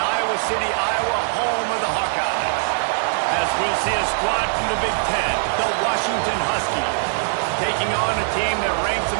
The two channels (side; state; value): left; silent; 65 dB below the other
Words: Iowa City, Iowa, home of the Hawkeyes. As we'll see a squad from the Big Ten, the Washington Huskies, taking on a team that ranks